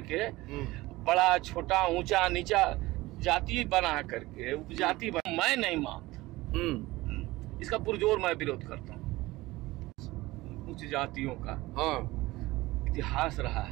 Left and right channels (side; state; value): left; quieter; 19.4 dB